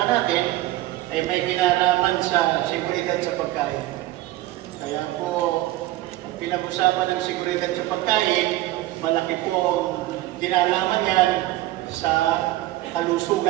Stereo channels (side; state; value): left; quieter; 16.4 dB